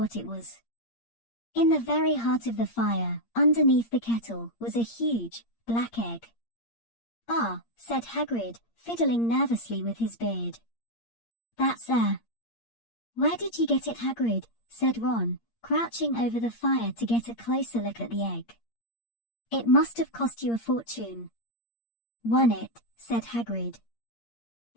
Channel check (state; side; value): late; right; 8.6 ms